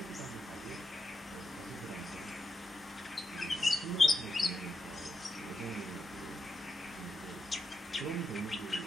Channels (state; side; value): normal; both; correlation 0.84